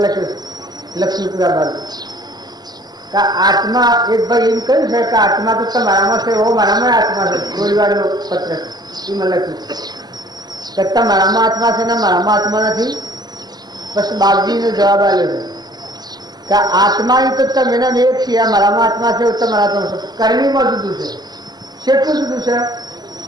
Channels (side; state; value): left; late; 0.20 ms